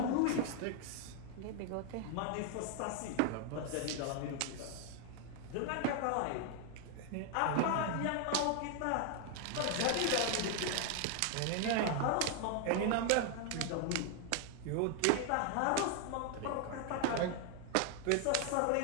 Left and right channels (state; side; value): different; both; correlation 0.00